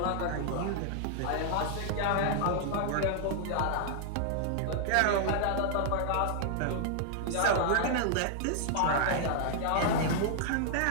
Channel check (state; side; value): different; both; correlation -0.01